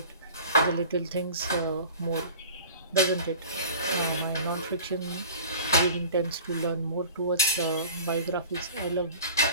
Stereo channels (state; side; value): inverted; both; correlation -0.42